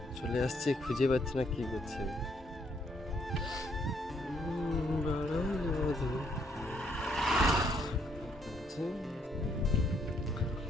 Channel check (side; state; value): both; normal; correlation 0.70